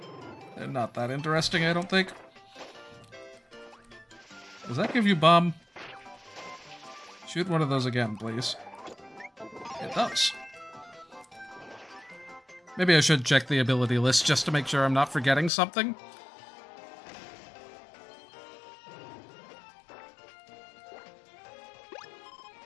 They're not that interesting, I don't think. Does that give you bomb? Shoot one of those again, please. It does. Maybe I should check the ability list just to make sure I'm not forgetting something.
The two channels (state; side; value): drops out; right; at 15.5 s